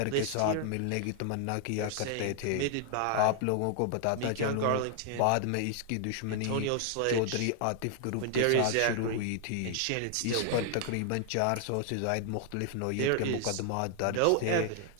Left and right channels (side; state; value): both; different; correlation 0.00